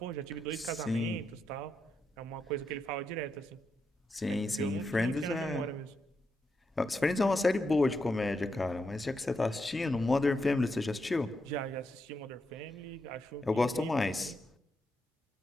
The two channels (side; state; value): both; normal; correlation 0.84